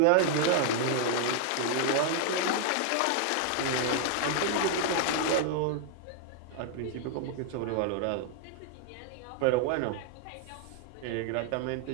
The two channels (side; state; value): both; different; correlation 0.00